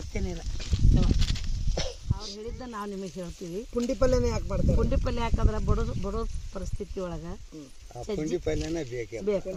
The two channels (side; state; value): both; identical; correlation 1.00